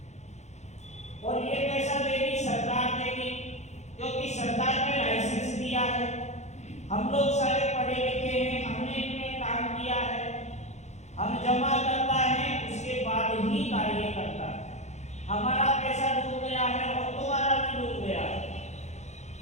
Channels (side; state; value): right; late; 0.33 ms